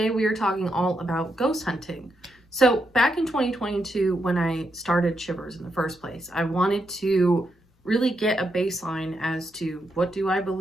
we are talking all about ghost hunting. So back in 2022, when I started Shivers in the first place, I wanted to really get a baseline as to what do I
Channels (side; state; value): both; normal; correlation 0.83